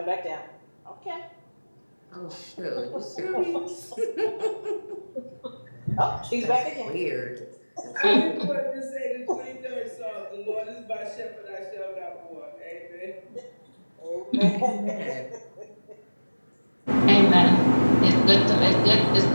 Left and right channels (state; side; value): inverted; both; correlation -1.00